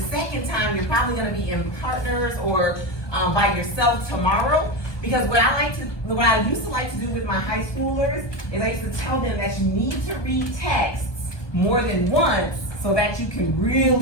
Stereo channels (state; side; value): late; right; 1.2 ms